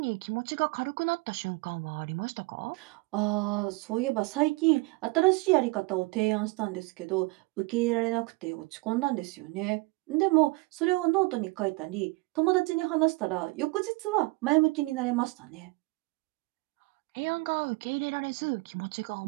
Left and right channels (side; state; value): left; quieter; 24.6 dB